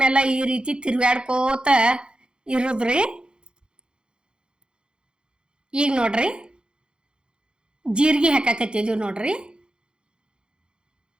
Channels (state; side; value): late; left; 0.050 ms